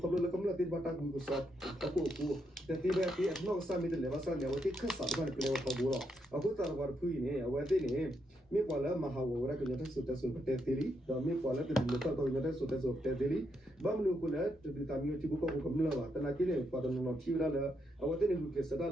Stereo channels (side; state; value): both; normal; correlation 0.79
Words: le kamla tin bata ku so ta ko ku te ti be ti no sa mi de le ba sa ne wati khasa ba ne kle ko bu ro aku tar war phui ne wati ne mi kwala mahawara ko nyata su ta su te tiri da mi kwala te lo ta ko nyata su ta su te tiri ba mu ko le te ta mi ti ko ko kamla ba ta na ki ne pa no ti ra la awate ne ku ke sa